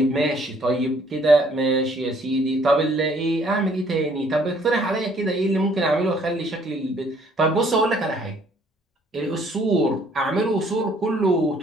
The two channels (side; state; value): both; normal; correlation 0.61